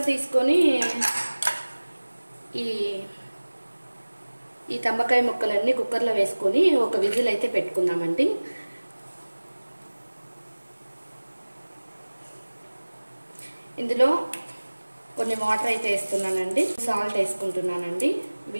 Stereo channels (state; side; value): inverted; both; correlation -1.00